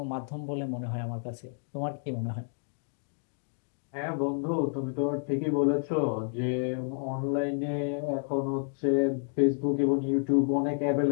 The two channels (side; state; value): right; silent; 58 dB below the other